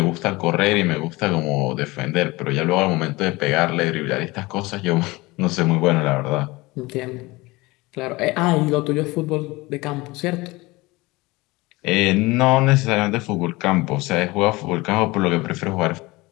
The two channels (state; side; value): quieter; right; 22.0 dB